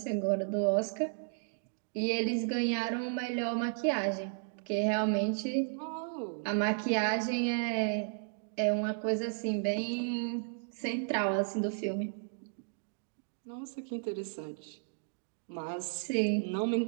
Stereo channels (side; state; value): left; silent; digital silence